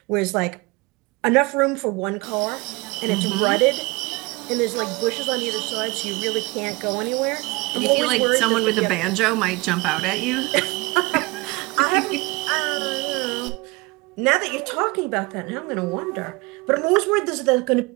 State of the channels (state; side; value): quieter; left; 24.7 dB